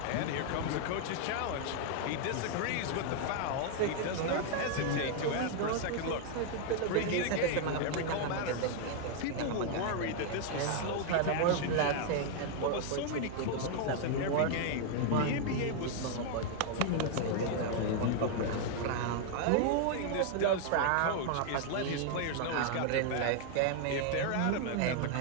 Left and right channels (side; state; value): both; different; correlation 0.00